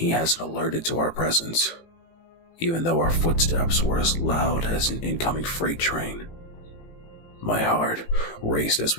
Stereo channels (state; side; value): late; right; 18 ms